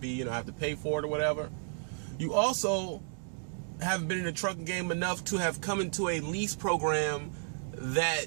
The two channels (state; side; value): silent; left; digital silence